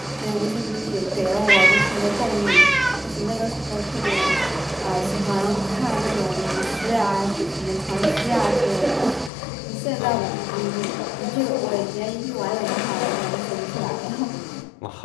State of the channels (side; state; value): right; drops out; at 9.3 s